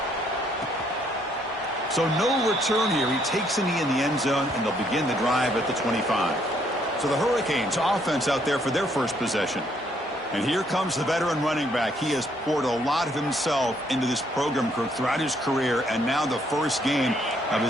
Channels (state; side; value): normal; both; correlation 0.69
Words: So no return here. He takes a knee in the end zone, and they'll begin the drive at the 25. So the Hurricanes offense out there for their first possession. And here comes the veteran running back. He has poured a lot of himself into this program throughout his career, and now the first game of